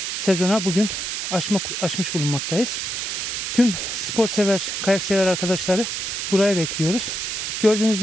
sezona bugün açmış bulunmaktayız. Tüm spor sever, kayak sever arkadaşları buraya bekliyoruz. Gördüğünüz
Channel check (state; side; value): noise; right; hiss, 3 dB below the sound